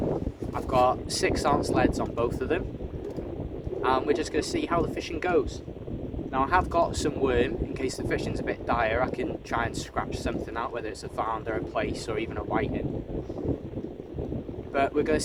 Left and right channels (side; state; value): both; identical; correlation 1.00